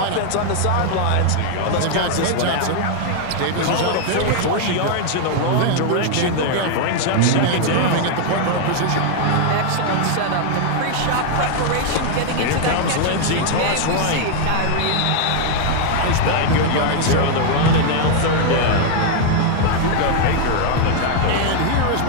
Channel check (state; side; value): different; both; correlation 0.00